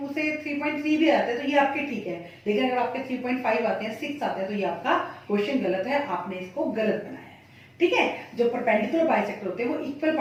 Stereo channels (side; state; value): both; identical; correlation 1.00